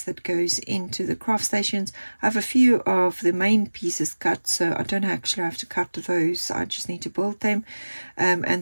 that goes into the craft stations. I have a few of the main pieces cut, so I don't actually have to cut those. I just need to build them.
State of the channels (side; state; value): both; inverted; correlation -1.00